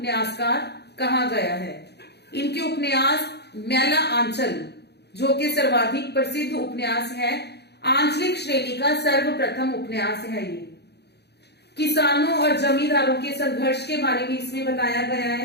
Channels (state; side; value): late; right; 0.48 ms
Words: कहा गया है। इनके उपन्यास मैला आंचल, जो कि सर्वाधिक प्रसिद्ध उपन्यास है, आंचलिक श्रेणी का सर्वप्रथम उपन्यास है। ये किसानों और जमींदारों के संघर्ष के बारे में इसमें बताया गया